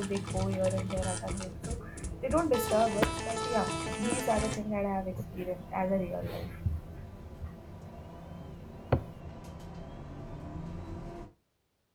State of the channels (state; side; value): identical; both; correlation 1.00